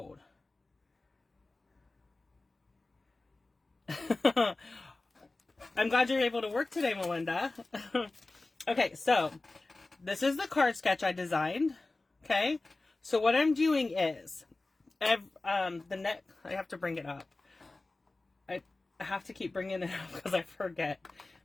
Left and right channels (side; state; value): right; quieter; 3.2 dB